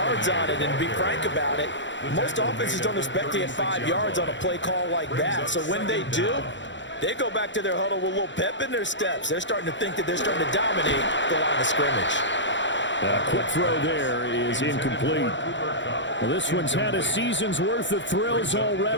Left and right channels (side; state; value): right; late; 0.54 ms